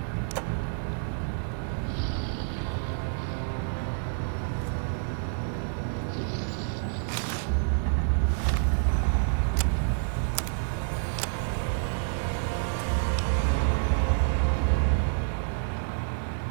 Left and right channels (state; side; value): silent; left; 59 dB below the other